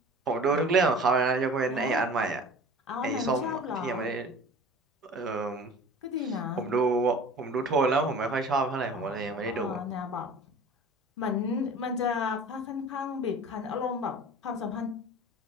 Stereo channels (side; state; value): both; normal; correlation 0.42